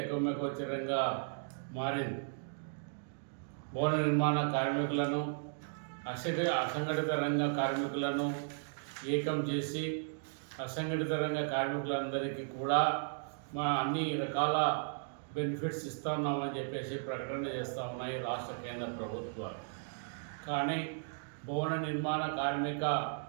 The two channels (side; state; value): left; silent; digital silence